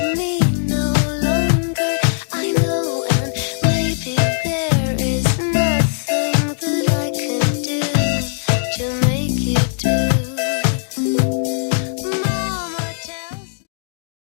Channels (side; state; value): right; silent; digital silence